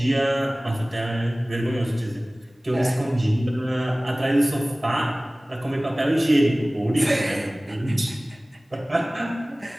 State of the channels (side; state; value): both; normal; correlation 0.98